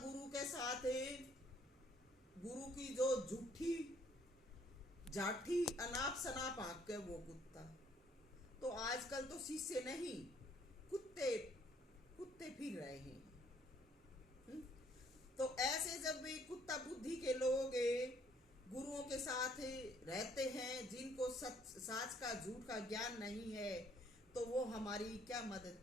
के साथ गुरु की जो झूठी जाठी अनाप शनाप आंख के वो कुत्ता। तो आजकल तो शिष्य नहीं कुत्ते कुत्ते फिर रहे हैं। तो ऐसे जब वे कुत्ता बुद्धि के लोग गुरुओं के साथ रहते हैं, जिनको साच का झूठ का ज्ञान नहीं है, तो वो हमारी क्या मदद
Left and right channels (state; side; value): normal; both; correlation 0.64